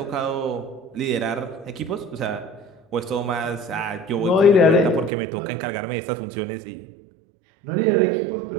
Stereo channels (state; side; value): drops out; left; at 5.1 s